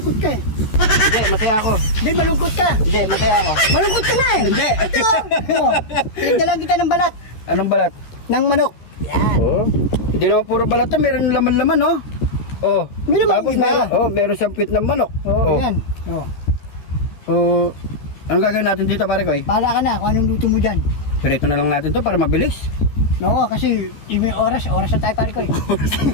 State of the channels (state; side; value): late; right; 14 ms